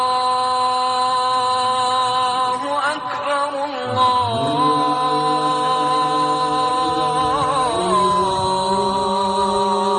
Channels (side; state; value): both; identical; correlation 1.00